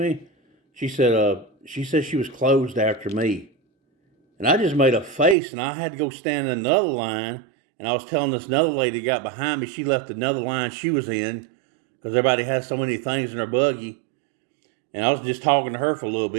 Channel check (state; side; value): drops out; left; at 5.4 s